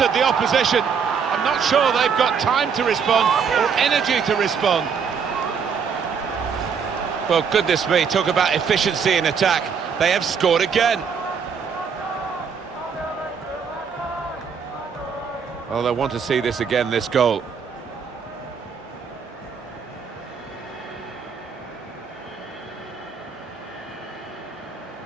the opposition. I'm not sure they've got time to respond or energy to respond. Well, goodness me, talk about efficiency in attack. They have scored again. Oh, they want to see this again, this goal.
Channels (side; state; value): left; quieter; 6.4 dB